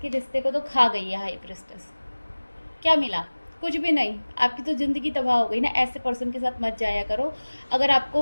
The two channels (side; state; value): both; inverted; correlation -1.00